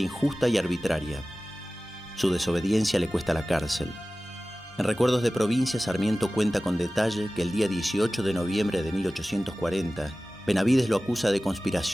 y arbitraria. Su desobediencia le cuesta la cárcel. En Recuerdos de Provincia, Sarmiento cuenta con detalle que el día 18 de noviembre de 1840, Benavídez lo acusa de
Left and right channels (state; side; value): normal; both; correlation 0.97